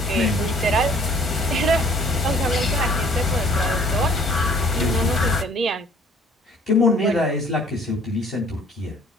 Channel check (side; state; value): both; normal; correlation 0.55